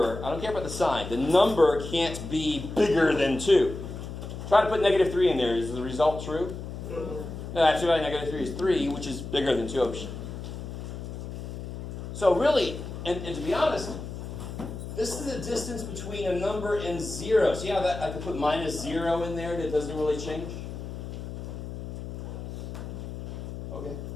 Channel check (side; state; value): left; noise; hum, 8 dB below the sound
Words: I don't care about the sign, the number can't be bigger than 2. Try to put negative 3 in there. Is the result true? No, absolute value of negative 3 is 3, which is bigger than 2. So really, and to be honest, this is the distance between a number and 0. See how that I could put minus 0 in there that doesn't really change? Okay.